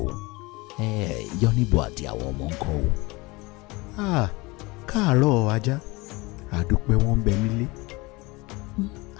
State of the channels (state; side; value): quieter; right; 23.9 dB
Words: o yọnibo àti àwọn ọmọ ń kọ́ o. káàárọ̀ ajá àdúpẹ́ wọn ń bẹ nílé.